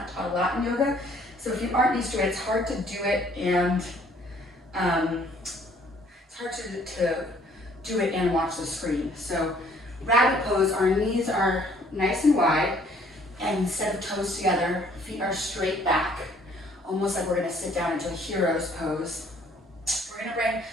taught a lot in yoga. So if you aren't used to it, it's hard to do it and it's hard to do it and watch the screen. So rabbit pose, our knees are nice and wide, and instead of toes together, feet are straight back, almost like we're gonna sit down into a hero's pose. We're gonna bring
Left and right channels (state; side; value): normal; both; correlation 0.60